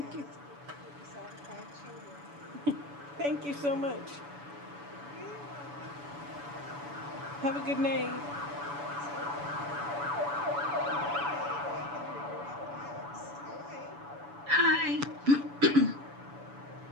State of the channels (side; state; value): left; late; 7.0 ms